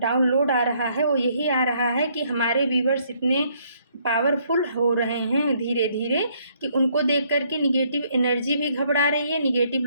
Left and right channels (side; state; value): both; inverted; correlation -0.68